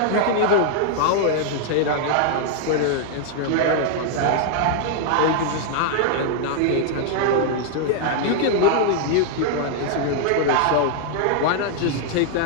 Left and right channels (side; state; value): both; different; correlation 0.00